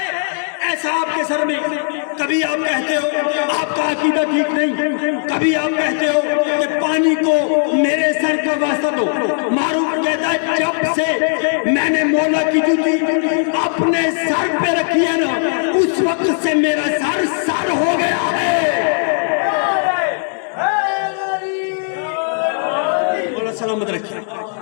ایسا آپ کے سر میں؟ کبھی آپ کہتے ہو آپ کا عقیدہ ٹھیک نہیں، کبھی آپ کہتے ہو کہ پانی کو میرے سر کا واسطہ دو. معروف کہتا ہے جب سے میں نے مولا کی جوتی اپنے سر پہ رکھی ہے نا، اس وقت سے میرا سر سر ہو گیا ہے. مولا سلامت رکھے.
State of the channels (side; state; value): right; silent; digital silence